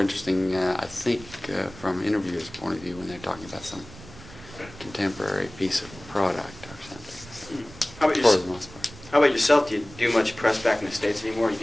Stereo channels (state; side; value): noise; right; rumble, 18 dB below the sound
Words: I think, from an interviewer's point of view when they're talking about some contemporary piece of product or something. Mm. For the most part. How about yourself? Do you do much press back in the States anymore? Or